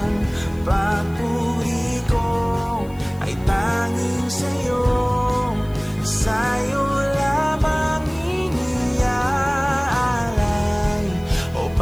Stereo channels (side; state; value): left; noise; hiss, 26 dB below the sound